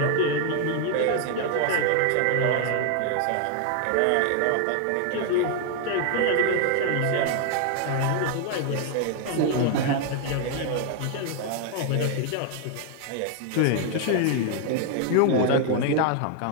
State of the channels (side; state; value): both; different; correlation 0.00